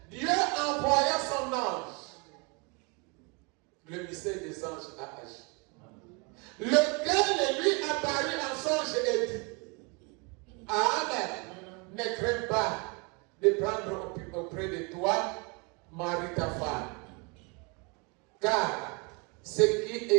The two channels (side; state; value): left; quieter; 31.5 dB